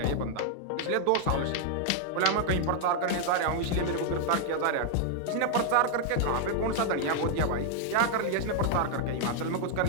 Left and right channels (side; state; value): both; different; correlation 0.00